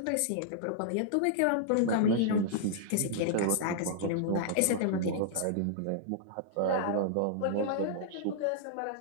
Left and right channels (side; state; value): both; different; correlation -0.01